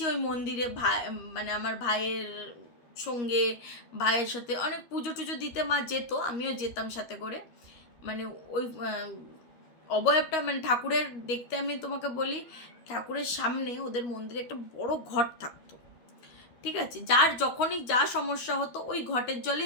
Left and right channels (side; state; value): right; late; 13 ms